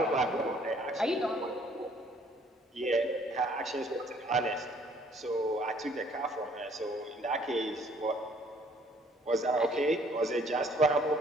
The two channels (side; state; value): both; normal; correlation 0.60